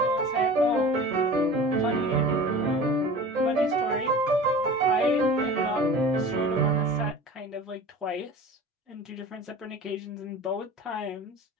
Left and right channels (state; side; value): normal; both; correlation 0.39